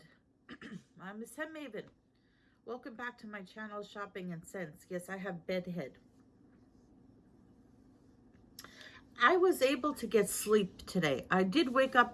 I'm Miss Hem Maven. Welcome back to my channel, Shopping and Sense. Yes, I have bedhead. I was able to get sleep today. I did wake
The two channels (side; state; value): both; identical; correlation 1.00